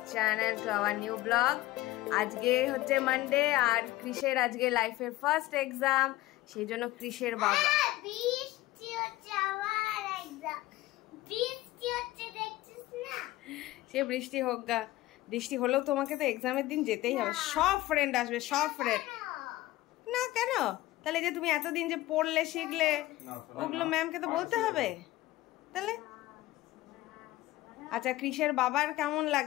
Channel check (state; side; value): quieter; right; 17.3 dB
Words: channel, to our new vlog. আজকে হচ্ছে Monday আর ক্রিশের আজকে লাইফের first exam, সেই জন্য ক্রিশের বাবা বৃষ্টি হচ্ছে, আমার এক্সাম বৃষ্টি হচ্ছে, দেখছিস না? সে বৃষ্টি হোক গা, বৃষ্টি হলেও তোমাকে তো এক্সামের দিন যেতেই হবে। সব ফ্রেন্ড আসবে, সব ফ্রেন্ড। না কেন? তাহলে যে তুমি এতদিন যে পড়লে শিখলে ওগুলো ম্যামকে তো বলতে হবে। তাহলে আচ্ছা, ক্রিশের বাবার কেমন